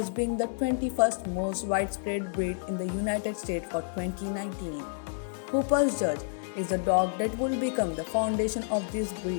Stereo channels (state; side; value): silent; right; 58 dB below the other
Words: being the 21st most widespread breed in the United States for 2019. Hooper's Judge is the dog that will become the foundation of this